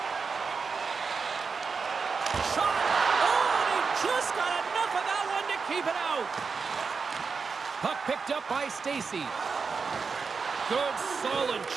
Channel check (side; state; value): left; quieter; 5.1 dB